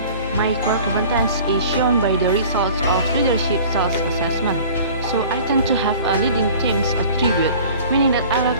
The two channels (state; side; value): inverted; both; correlation -0.45